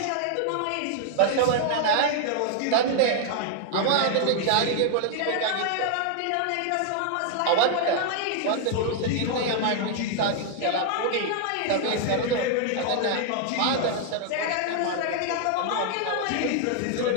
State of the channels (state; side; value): different; both; correlation 0.00